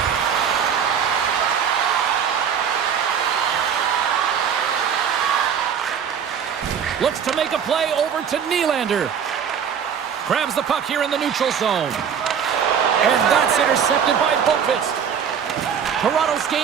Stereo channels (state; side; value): quieter; left; 7.7 dB